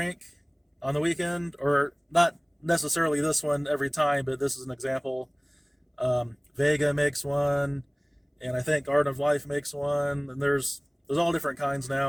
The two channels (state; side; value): identical; both; correlation 1.00